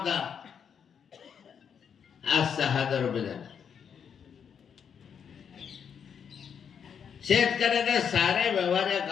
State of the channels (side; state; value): right; quieter; 7.5 dB